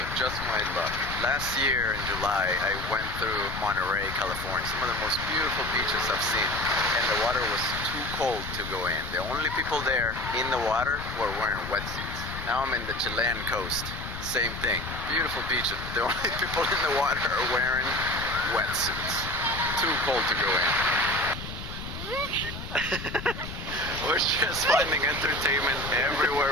just my luck. Last year in July, I went through Monterey, California. Some of the most beautiful beaches I've seen. And the water was too cold to go in. The only people there in the water were wearing wetsuits. Now I'm in the Chilean coast. Same thing. Beautiful beaches, but the only people in the water are wearing wetsuits. Too cold to go in. We're just finding entertainment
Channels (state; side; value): noise; left; rumble, 9 dB below the sound